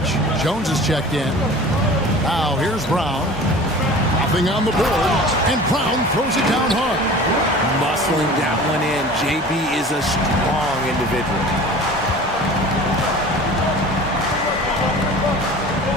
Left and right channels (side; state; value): both; normal; correlation 0.41